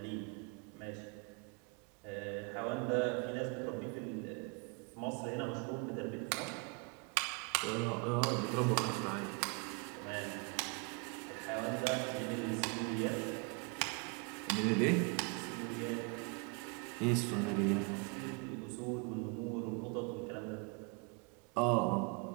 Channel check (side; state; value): left; quieter; 34.0 dB